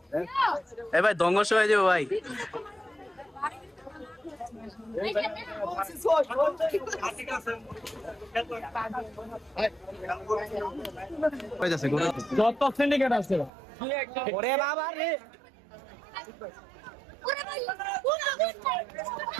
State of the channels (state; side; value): drops out; left; at 13.5 s